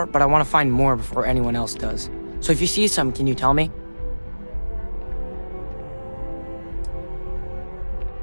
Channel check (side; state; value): both; inverted; correlation -1.00